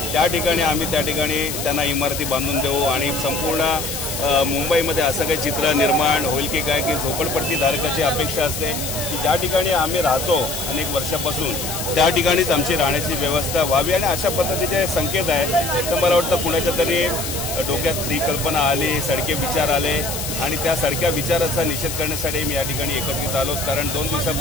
त्या ठिकाणी आम्ही त्या ठिकाणी त्यांना इमारती बांधून देऊ आणि संपूर्ण मुंबईमध्ये असं काही चित्र निर्माण होईल की काय की झोपडपट्टी धारकाची अपेक्षा असते की ज्या ठिकाणी आम्ही राहतो अनेक वर्षापासून त्या ठिकाणीच आमची राहण्याची व्यवस्था व्हावी आणि अशा पद्धतीचे संकेत आहे. तर मला वाटतं कुणाच्या तरी डोक्यात ही कल्पना आली, सडके विचार आले आणि त्या सडक्या विचाराचा निषेध करण्यासाठी मी या ठिकाणी एकत्रित आलो. कारण 2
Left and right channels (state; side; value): noise; left; hiss, 5 dB below the sound